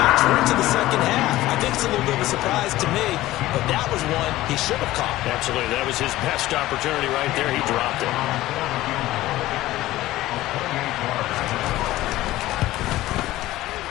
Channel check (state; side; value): quieter; right; 16.3 dB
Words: We're into the second half. I think it's a little bit of a surprise to me, but that was one he should have caught. Absolutely. That was his best opportunity right there. He dropped it.